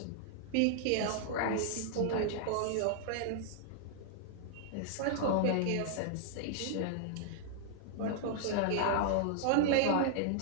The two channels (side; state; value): both; different; correlation -0.01